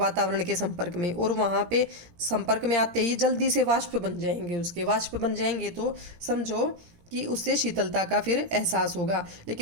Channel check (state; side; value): late; left; 17 ms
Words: के संपर्क में, और वहाँ पे संपर्क में आते ही जल्दी से वाष्प बन जाएंगे। उसके वाष्प बन जाएंगे तो समझो कि उससे शीतलता का फिर एहसास होगा।